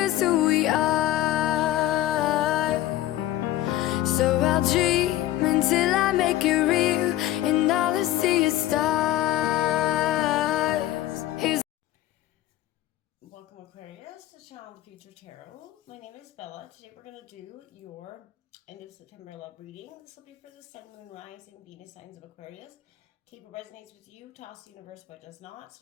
who we are. So I'll dream until I make it real, and all I see is stars. Welcome, Aquarius, to Channel the Future Tarot. My name is Bella. Today we're going to do your end of September love reading. This will be for the Sun, Moon, Rising, Venus signs of Aquarius. Okay, if it resonates with you, toss the universe, but does not. It's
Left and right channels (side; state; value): right; quieter; 14.3 dB